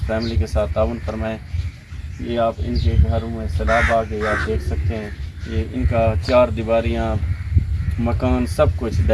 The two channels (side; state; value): both; identical; correlation 1.00